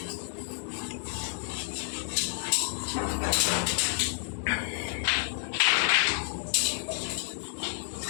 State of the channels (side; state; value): right; silent; digital silence